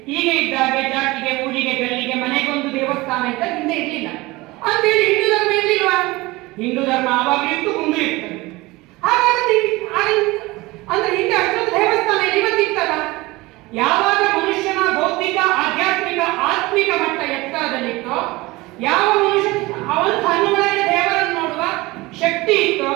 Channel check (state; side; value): quieter; left; 21.3 dB